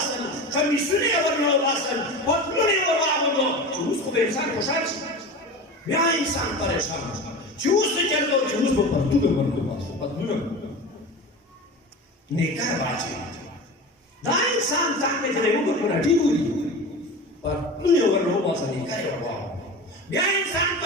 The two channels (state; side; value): normal; both; correlation 0.30